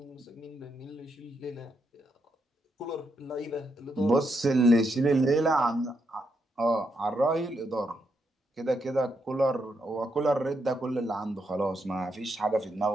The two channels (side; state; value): both; normal; correlation 0.80